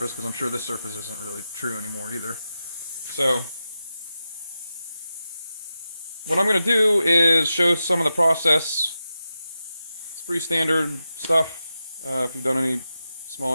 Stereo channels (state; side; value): inverted; both; correlation -0.90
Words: because I'm sure this surface isn't really true anymore either. So, what I'm going to do is show some of the process. It's pretty standard stuff if you've done any small